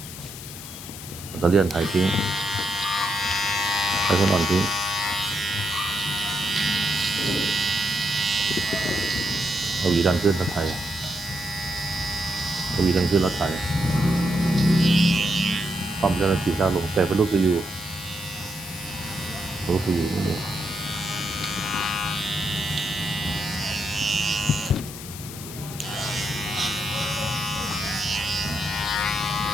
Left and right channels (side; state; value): left; noise; hiss, 12 dB below the sound